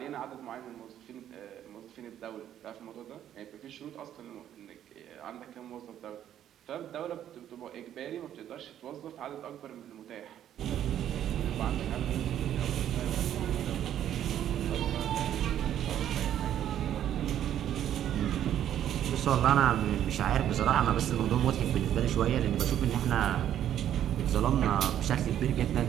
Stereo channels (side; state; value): left; quieter; 10.8 dB